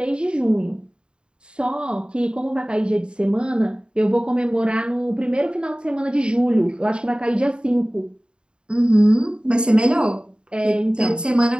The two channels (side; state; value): left; late; 0.052 ms